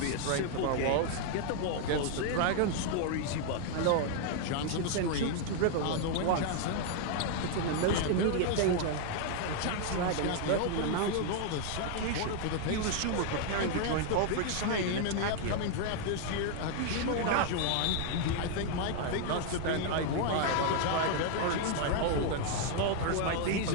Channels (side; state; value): both; different; correlation 0.00